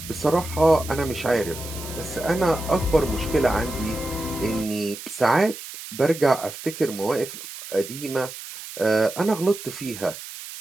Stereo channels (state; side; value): noise; right; hiss, 12 dB below the sound